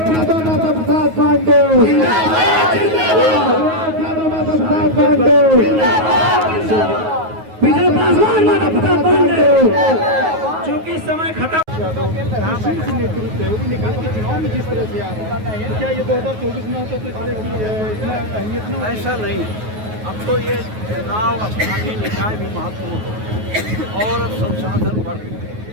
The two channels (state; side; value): late; left; 9.4 ms